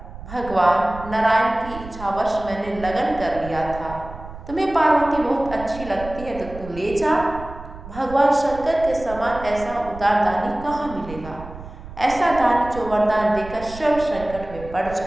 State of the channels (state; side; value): noise; right; rumble, 14 dB below the sound